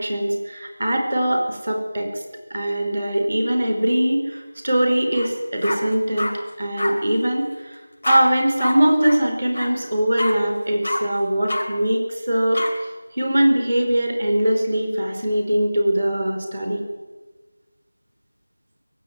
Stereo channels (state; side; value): inverted; both; correlation -0.97